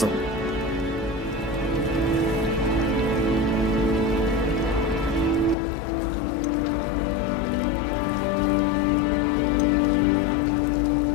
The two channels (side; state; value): right; drops out; at 5.6 s